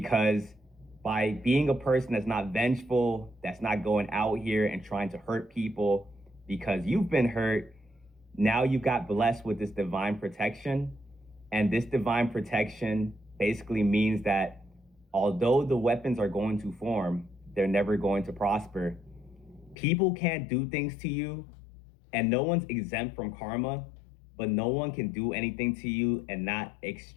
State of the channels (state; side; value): drops out; right; at 19.8 s